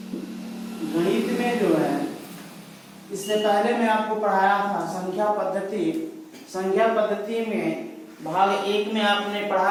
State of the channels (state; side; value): identical; both; correlation 1.00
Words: जो है, इससे पहले मैं आपको पढ़ाया था संख्या पद्धति। संख्या पद्धति में भाग 1 में आपने